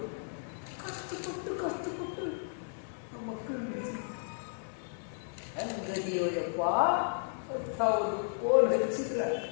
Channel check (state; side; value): silent; right; 55 dB below the other